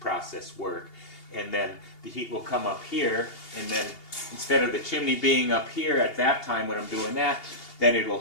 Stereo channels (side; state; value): right; late; 2.8 ms